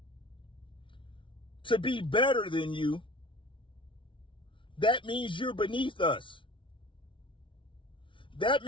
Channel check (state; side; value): late; right; 0.25 ms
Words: to be better than you, that means you're beneath us. That